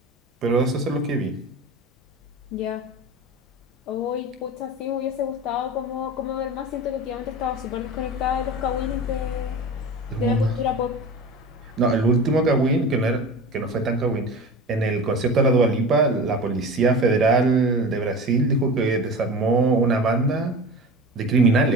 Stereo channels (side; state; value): both; normal; correlation 0.33